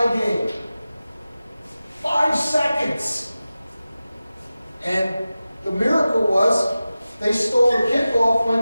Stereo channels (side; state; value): both; inverted; correlation -0.95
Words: game. 5 seconds. And the miracle was they stole the kickoff,